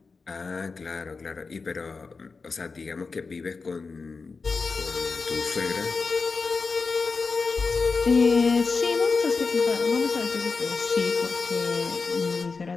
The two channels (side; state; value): right; quieter; 4.5 dB